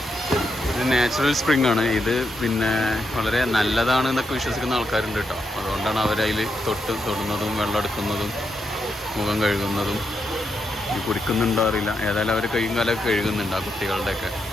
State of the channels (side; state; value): both; normal; correlation 0.82